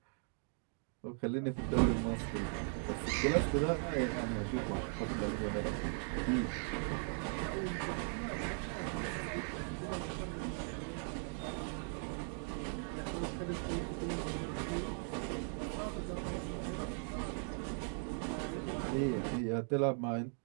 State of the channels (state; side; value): silent; left; 52 dB below the other